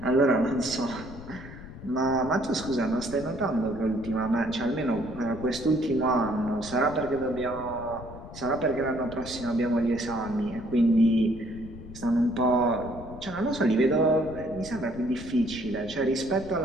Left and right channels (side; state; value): left; noise; rumble, 14 dB below the sound